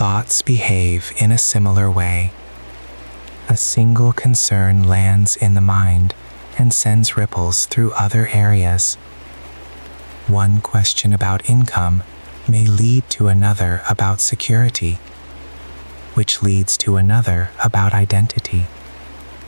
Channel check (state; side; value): inverted; both; correlation -1.00